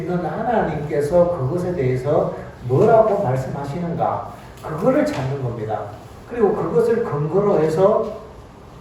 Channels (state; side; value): identical; both; correlation 1.00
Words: 하나님께서 그것에 대해서 뭐라고 말씀하시는가, 그거를 찾는 겁니다. 그리고 그것을 근거로 해서